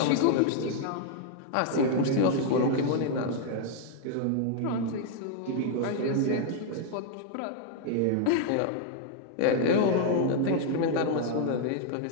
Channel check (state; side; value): different; both; correlation 0.00